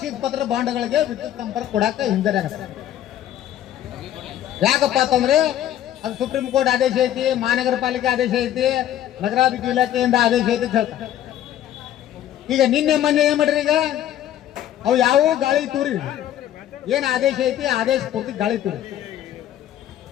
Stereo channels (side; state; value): right; quieter; 11.7 dB